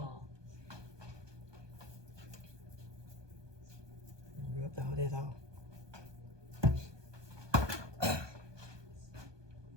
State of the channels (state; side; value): late; left; 1.2 ms